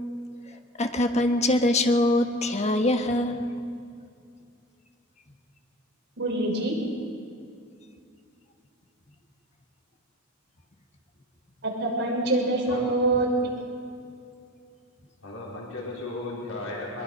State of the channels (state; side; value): normal; both; correlation 0.36